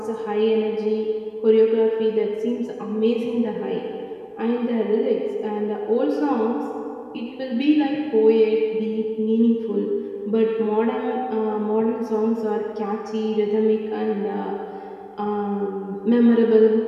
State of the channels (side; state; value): both; identical; correlation 1.00